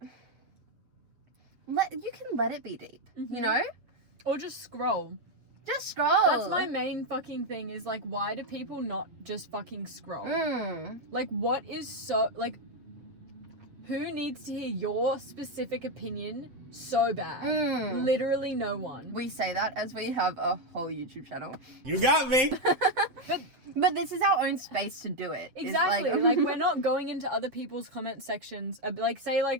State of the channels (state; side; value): late; left; 7.6 ms